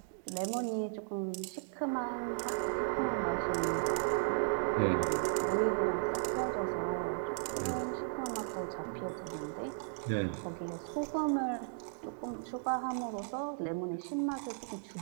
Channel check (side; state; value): left; silent; digital silence